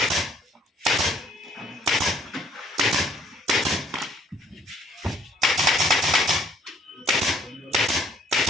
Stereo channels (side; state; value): both; normal; correlation 0.62